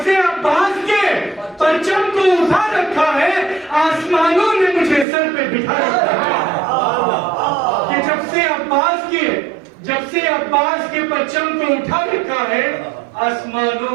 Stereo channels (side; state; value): left; drops out; at 5.1 s